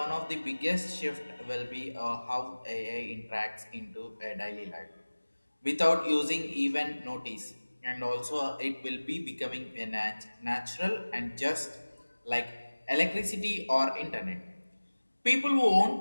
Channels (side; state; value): both; inverted; correlation -1.00